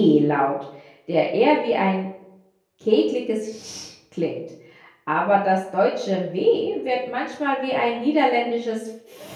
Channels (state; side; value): identical; both; correlation 1.00